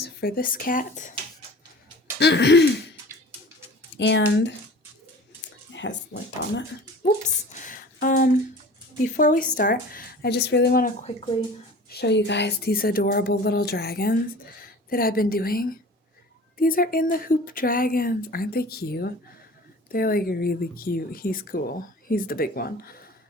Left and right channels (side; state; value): both; normal; correlation 0.41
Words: for this cat. And it has lint on it. Whoops. Before we start, I just really want to quickly show you guys these adorable little dragons that I've been doing. These are in the hoop dragons. Aren't they cute? They're like really cute. He's cool. He's the big one.